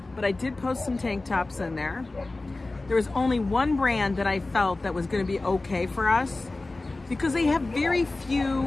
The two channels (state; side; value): quieter; right; 3.1 dB